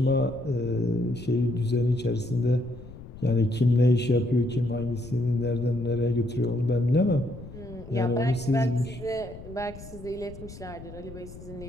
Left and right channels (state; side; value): noise; left; rumble, 15 dB below the sound